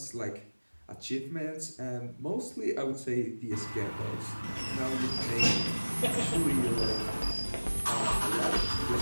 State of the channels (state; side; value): inverted; both; correlation -1.00